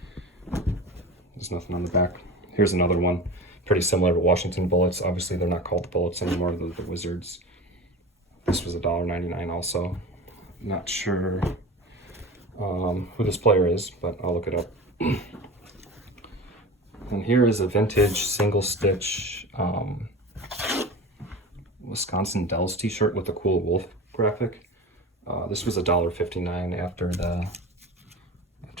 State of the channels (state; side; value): normal; both; correlation 0.32